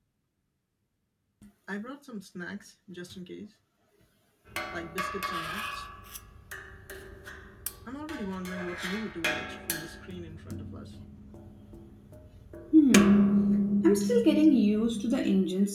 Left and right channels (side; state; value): both; identical; correlation 1.00